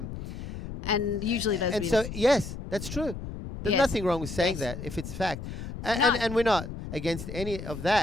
and usually those. and so yes, that's true. There's Yes. nothing wrong with saying Yes. that if it's fact. And, No. and we're not against any of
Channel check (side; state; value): left; noise; rumble, 9 dB below the sound